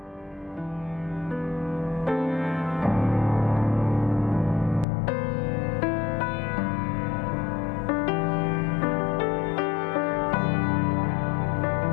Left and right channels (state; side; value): drops out; right; at 4.9 s